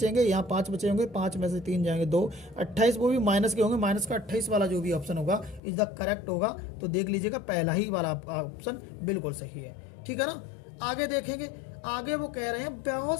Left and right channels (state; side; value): drops out; right; at 5.6 s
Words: यहाँ 5 बचे होंगे, 5 में से 3 जाएंगे 2, 28 वो भी माइनस के होंगे, माइनस का 28 वाला जो भी ऑप्शन होगा इज द करेक्ट होगा। तो देख लीजिएगा पहला ही वाला ऑप्शन बिल्कुल सही है। ठीक है ना। आगे देखेंगे, आगे वो कह रहे हैं